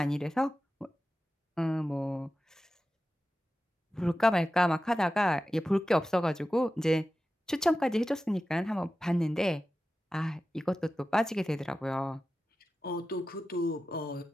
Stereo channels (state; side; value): normal; both; correlation 0.94